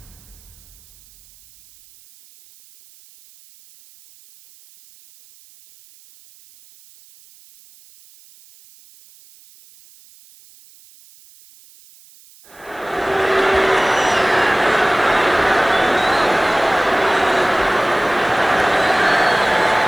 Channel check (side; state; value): right; noise; hiss, 27 dB below the sound